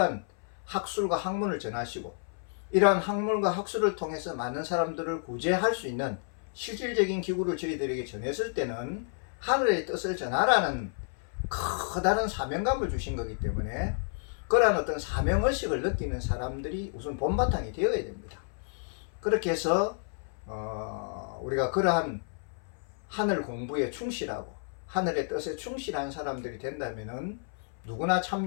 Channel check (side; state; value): right; silent; 57 dB below the other